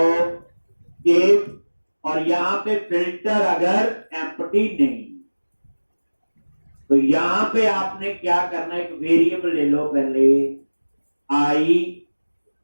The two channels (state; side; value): inverted; both; correlation -1.00